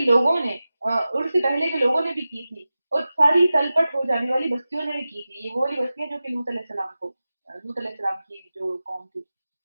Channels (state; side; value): inverted; both; correlation -0.95